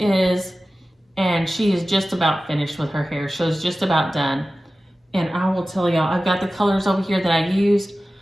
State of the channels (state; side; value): normal; both; correlation 0.95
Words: and she is just about finished with her hair. She's just about done. And I will tell y'all, I've got the colors over here that I used.